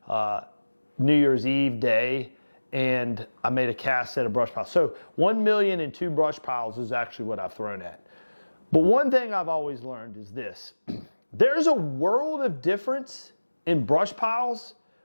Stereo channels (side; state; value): both; inverted; correlation -1.00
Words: New Year's Eve day, and I made a cast set of brush piles. So 1,000,002 brush piles is actually what I've thrown at. But one thing I've always learned is this. There's a world of difference in brush piles.